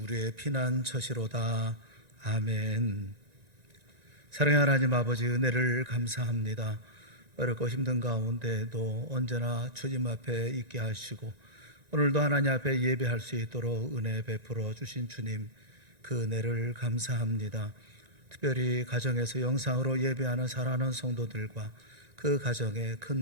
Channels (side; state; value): left; late; 1.9 ms